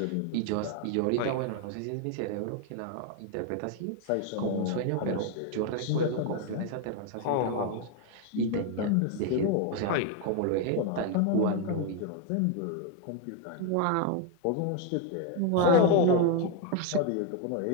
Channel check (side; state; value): both; different; correlation 0.01